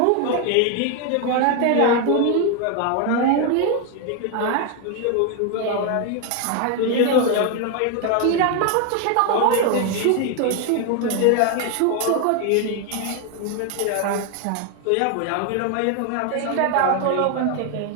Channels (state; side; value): different; both; correlation 0.01